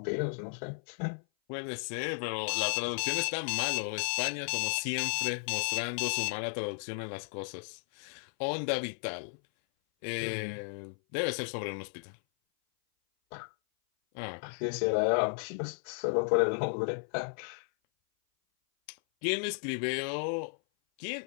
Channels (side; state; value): right; silent; 55 dB below the other